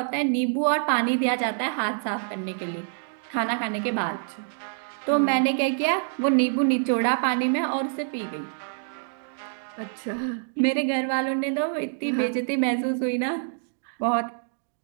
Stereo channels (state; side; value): silent; left; digital silence